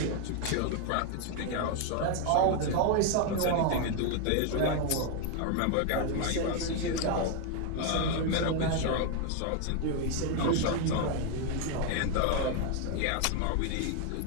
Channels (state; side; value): different; both; correlation 0.01